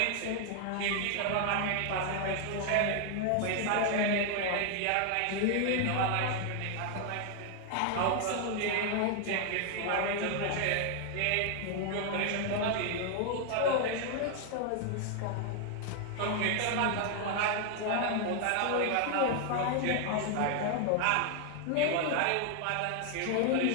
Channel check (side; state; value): both; different; correlation 0.00